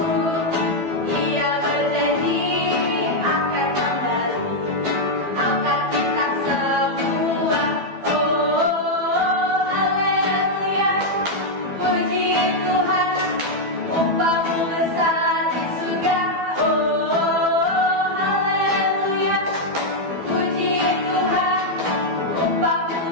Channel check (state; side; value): late; left; 12 ms